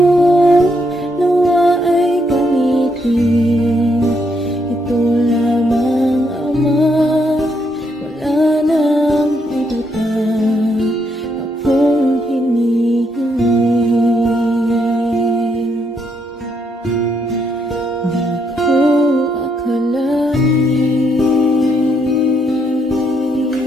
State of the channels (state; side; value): normal; both; correlation 0.75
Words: nawa ay gamitin. Ito lamang, Ama, wala nang iba pa akong hinihiling. Di ko akalain na